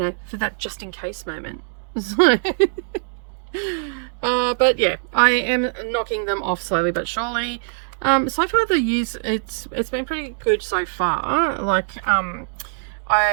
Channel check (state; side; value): silent; left; digital silence